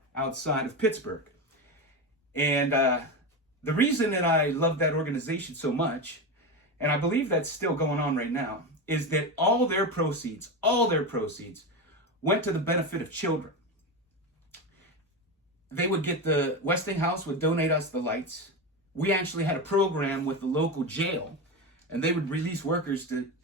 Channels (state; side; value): normal; both; correlation 0.18